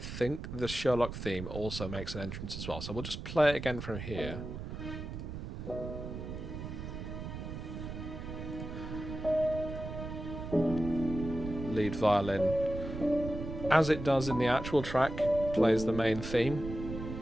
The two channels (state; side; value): noise; right; rumble, 7 dB below the sound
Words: the Sherlock theme also makes an entrance as well. So we'll just play it again from here. Lead violin. as it does in the actual track, plays the main theme.